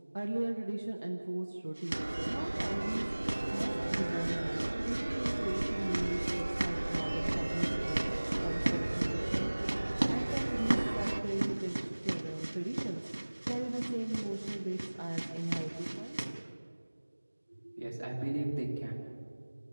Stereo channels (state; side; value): inverted; both; correlation -1.00